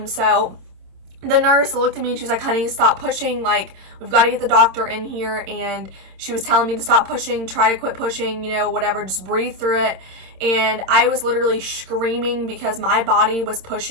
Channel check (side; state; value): left; late; 27 ms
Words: So the nurse looked at me and she was like, honey, stop pushing. Like, we've got to get the doctor in here. And she was telling me to stop pushing, try to quit pushing, you know, whatever, just breathe through it. And I was literally screaming because my body was